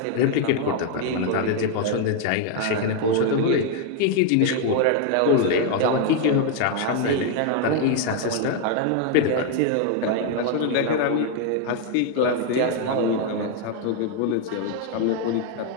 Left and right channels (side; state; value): both; different; correlation 0.00